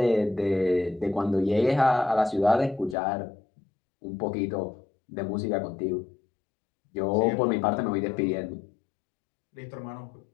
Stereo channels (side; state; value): right; drops out; at 3.0 s